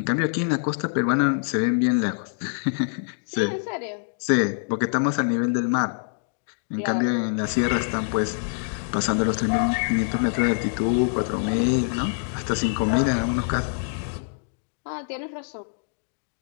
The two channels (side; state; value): right; silent; digital silence